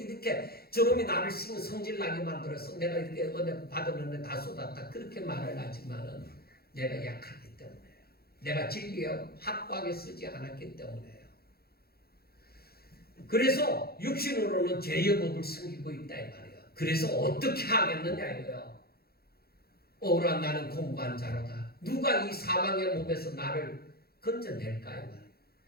이렇게 저놈이 나를 성질나게 만들었어? 내가 이렇게 은혜 받았는데 다 쏟았다. 그렇게 말을 하지만은 내가 약하기 때문에요. 내가 진리에 확고하게 쓰지 않았기 때문에요. 그래서 육신으로는 죄의 법을 숨기고 있다 이 말이에요. 그래서 어떻게 하겠느냐 이거예요. 오라 나는 공고한 자로다. 누가 이 사망의 몸에서 나를 건져낼까 이 말이에요.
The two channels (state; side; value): late; right; 0.45 ms